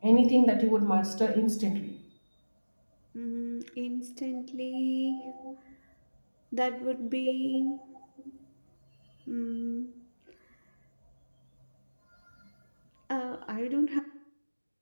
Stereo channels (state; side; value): inverted; both; correlation -1.00